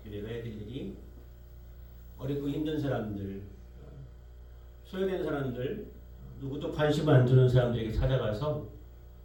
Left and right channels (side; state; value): both; identical; correlation 1.00